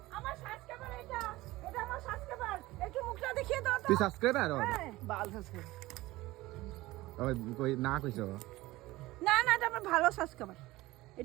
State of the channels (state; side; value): quieter; left; 18.6 dB